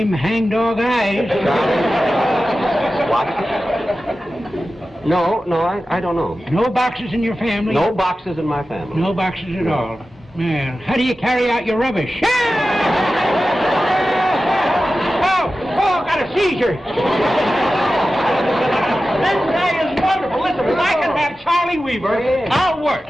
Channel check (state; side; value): normal; both; correlation 0.94